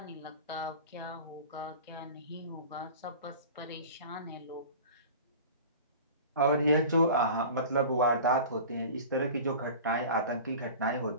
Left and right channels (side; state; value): both; inverted; correlation -0.38